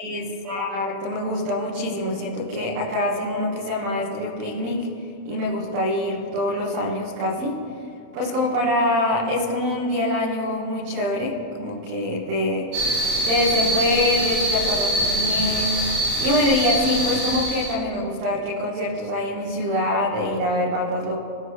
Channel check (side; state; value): left; late; 35 ms